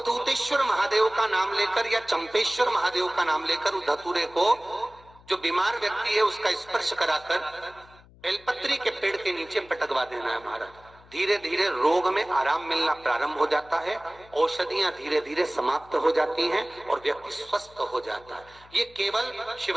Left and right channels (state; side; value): noise; left; hum, 25 dB below the sound